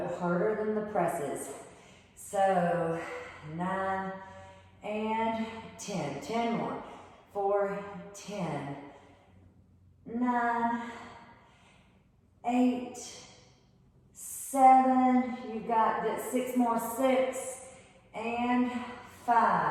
harder than the presses. So 9 and 10. 10 more. 4, 10. 9, 8, 7. You got that. 6 more. 6 and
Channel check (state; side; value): identical; both; correlation 1.00